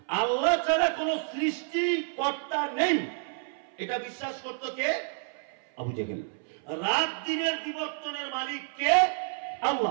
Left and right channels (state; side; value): silent; left; 58 dB below the other